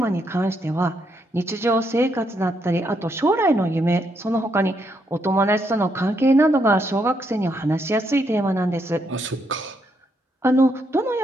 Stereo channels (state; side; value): normal; both; correlation 0.77